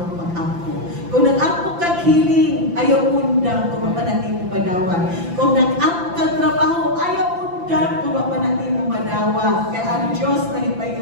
pag-ako. Kung nag-ako kag hiling, ayaw undang kung mapanati mo madawat. Kung nag-ako kag trabaho, ayaw undang kung mapanati mo madawat. Kaya ang Diyos na hipayo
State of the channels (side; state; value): left; late; 5.9 ms